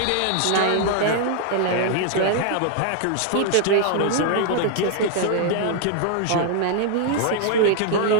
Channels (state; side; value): different; both; correlation 0.00